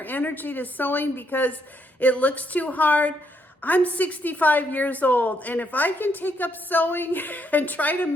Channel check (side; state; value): both; normal; correlation 0.74